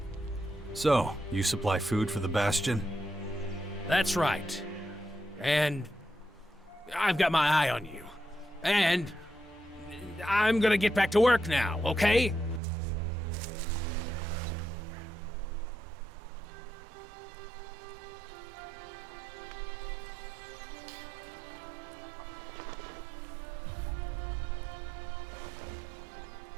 So, you supply food for the Bastion? That's right. And I've got my eye on you. And I'm gonna get back to work now, okay?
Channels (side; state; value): left; drops out; at 12.6 s